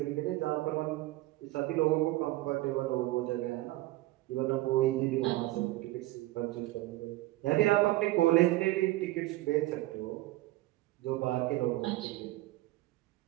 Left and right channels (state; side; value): quieter; left; 18.1 dB